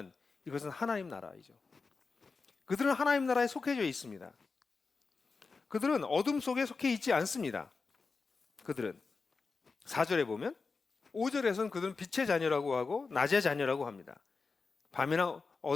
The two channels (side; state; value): right; quieter; 4.4 dB